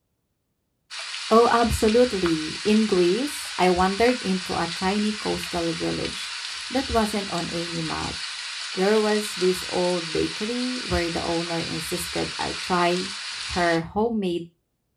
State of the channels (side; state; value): both; identical; correlation 1.00